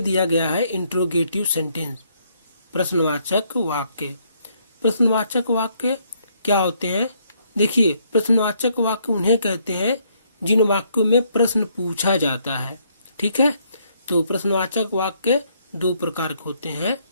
गया है इंट्रोगेटिव सेंटेंस, प्रश्नवाचक वाक्य। प्रश्नवाचक वाक्य क्या होते हैं? देखिए, प्रश्नवाचक वाक्य उन्हें कहते हैं जिन वाक्यों में प्रश्न पूछा जाता है। ठीक है, तो प्रश्नवाचक वाक्य दो प्रकार के होते हैं।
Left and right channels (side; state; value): both; inverted; correlation -0.70